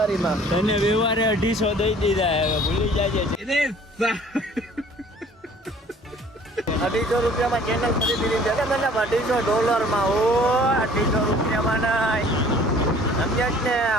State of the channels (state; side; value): normal; both; correlation 0.52